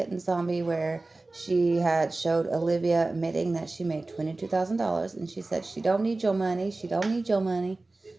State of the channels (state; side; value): quieter; left; 3.2 dB